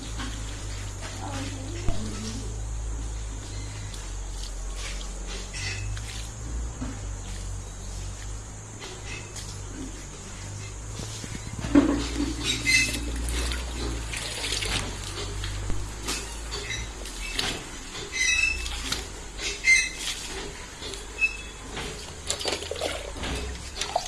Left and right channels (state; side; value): identical; both; correlation 1.00